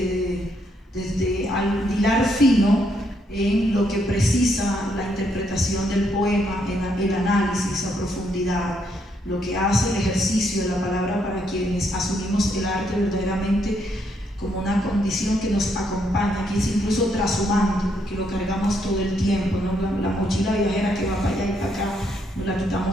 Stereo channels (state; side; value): normal; both; correlation 0.74